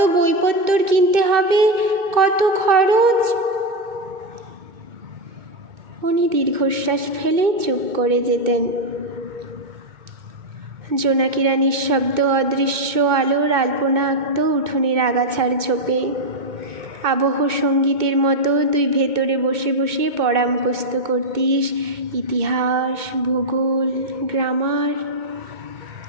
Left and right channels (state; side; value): late; left; 2.2 ms